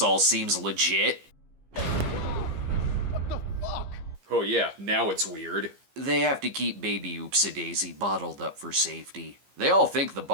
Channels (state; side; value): late; left; 15 ms